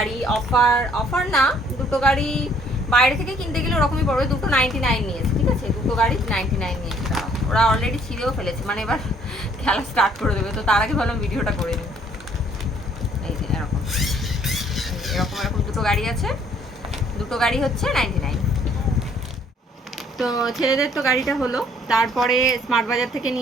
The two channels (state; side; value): normal; both; correlation 0.62